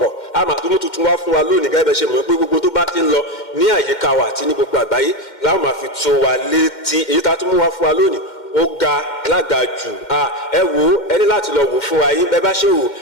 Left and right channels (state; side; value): late; right; 2.1 ms